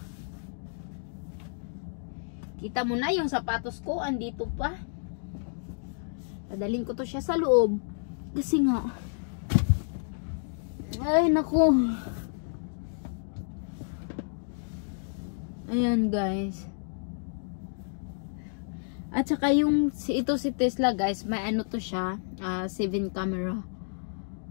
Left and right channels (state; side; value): silent; right; digital silence